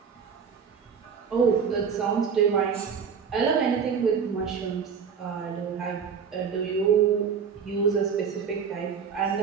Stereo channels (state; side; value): quieter; left; 6.6 dB